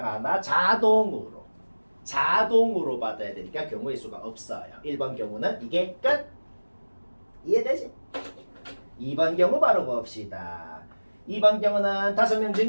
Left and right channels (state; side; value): inverted; both; correlation -1.00